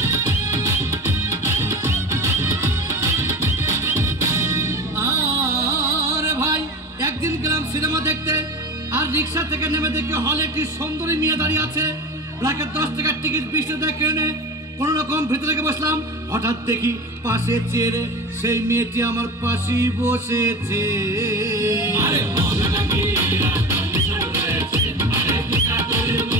একদিন গেলাম সিনেমা দেখতে, আর রিক্সা থেকে নেমে দেখি হলে একটি সুন্দরী মেয়ে দাঁড়িয়ে আছে। প্রায় 10 টাকার টিকিট 20 টাকা কিনে কোন রকম ভিতরে বসলাম। হঠাৎ দেখি পাশে চেয়ারে সেই মেয়েটি আমার পাশেই বসেছে।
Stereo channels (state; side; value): normal; both; correlation 0.31